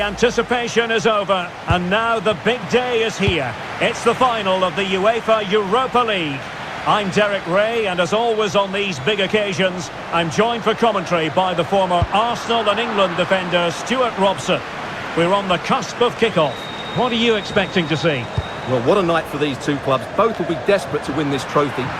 anticipation is over, and now the big day is here. It's the final of the UEFA Europa League. I'm Derek Ray, and as always on these big occasions, I'm joined for commentary by the former Arsenal and England defender Stuart Robson. We're on the cusp of kickoff. What are you expecting to see? Well, what a night for these two clubs. Both will be desperate to win this trophy.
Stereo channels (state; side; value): identical; both; correlation 1.00